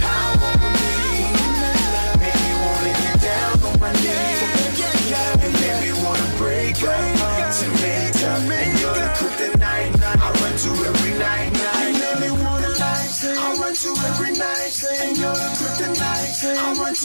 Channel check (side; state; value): both; inverted; correlation -1.00